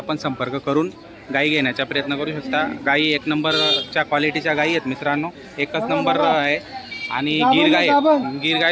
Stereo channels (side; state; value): both; identical; correlation 1.00